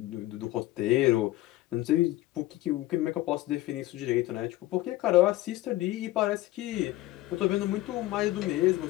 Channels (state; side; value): quieter; right; 16.9 dB